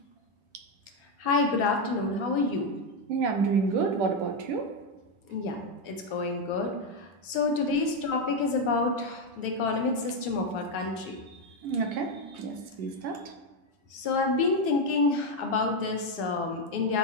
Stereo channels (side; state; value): left; late; 9.7 ms